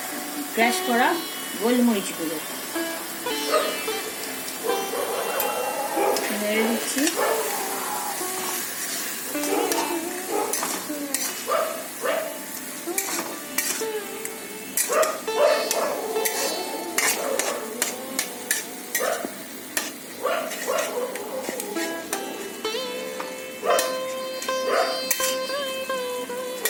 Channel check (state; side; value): identical; both; correlation 1.00